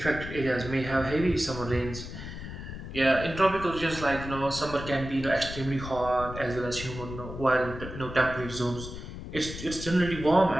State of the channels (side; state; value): left; noise; rumble, 10 dB below the sound